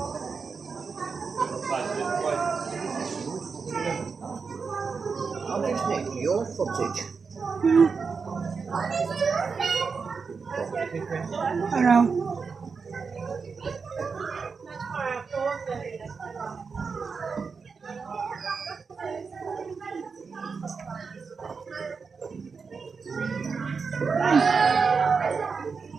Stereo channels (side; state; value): left; quieter; 5.2 dB